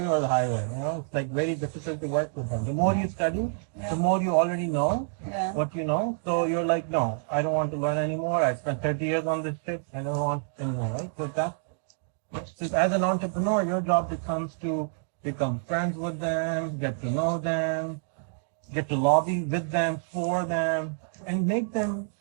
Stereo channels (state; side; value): silent; left; 59 dB below the other